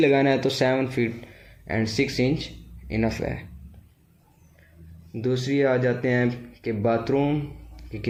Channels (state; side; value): identical; both; correlation 1.00